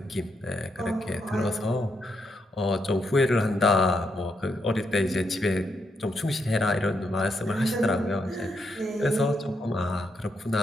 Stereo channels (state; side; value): normal; both; correlation 0.80